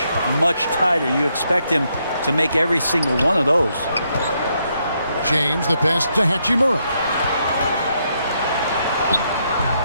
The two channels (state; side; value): inverted; both; correlation -0.77